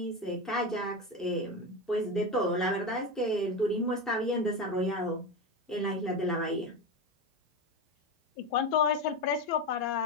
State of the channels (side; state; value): both; normal; correlation 0.18